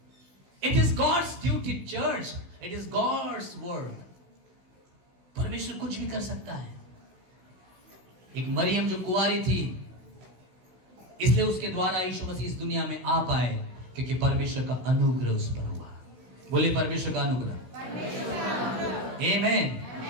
It is God's duty church, it is God's work. परमेश्वर कुछ भी कर सकता है। एक मरियम जो कुंवारी थी, इसलिए उसके द्वारा यीशु मसीह इस दुनिया में आ पाए, क्योंकि परमेश्वर का अनुग्रह उस पर हुआ। बोले परमेश्वर का अनुग्रह। आमीन।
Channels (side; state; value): left; late; 16 ms